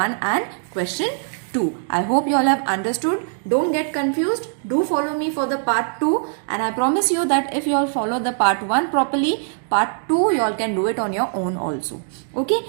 and question 2. I hope you all have understood. Don't get confused. Do follow me for the part 2 and I promise you that if you all follow the part 1 properly, part 2 you all can do it on your own also. Okay,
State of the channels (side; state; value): left; silent; digital silence